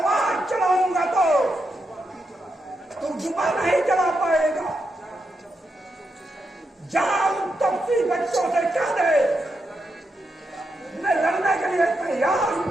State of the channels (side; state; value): both; normal; correlation 0.84